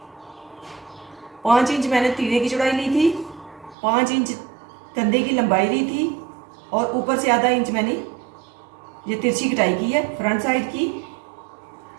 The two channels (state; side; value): drops out; left; at 3.8 s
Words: 5 इंच मैंने तीरे की चौड़ाई ली थी, 5 इंच कंधे की लंबाई ली थी और ऊपर से आधा इंच मैंने ये तिरछी कटाई की है फ्रंट साइड की।